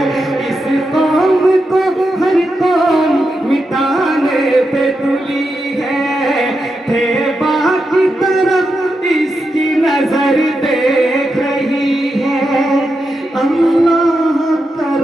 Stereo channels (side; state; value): both; normal; correlation 0.87